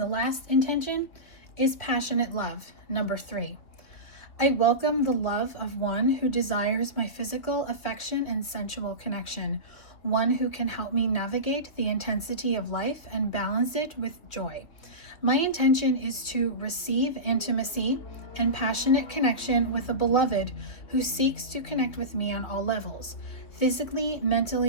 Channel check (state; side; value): late; right; 2.9 ms